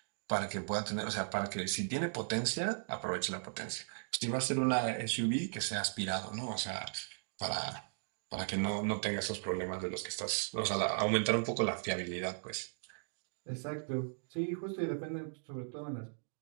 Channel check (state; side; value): silent; left; digital silence